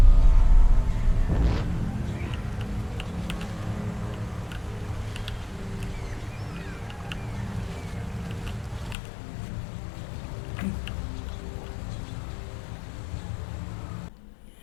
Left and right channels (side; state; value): right; drops out; at 9.0 s